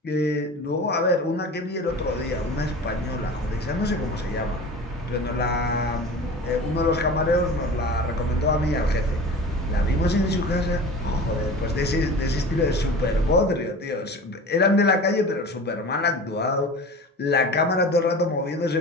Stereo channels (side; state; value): both; normal; correlation 0.36